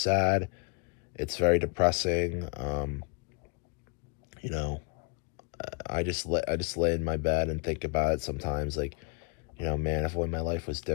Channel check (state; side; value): quieter; right; 34.3 dB